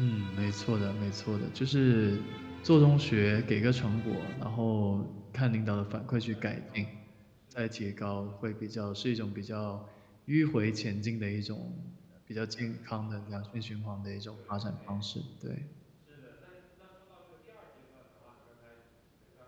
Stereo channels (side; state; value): both; identical; correlation 1.00